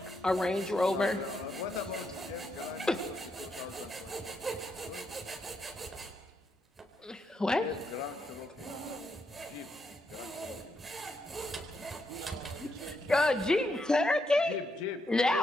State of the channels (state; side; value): normal; both; correlation 0.80